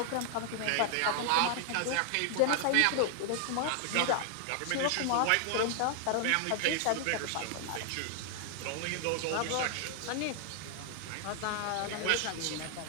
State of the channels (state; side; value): different; both; correlation 0.00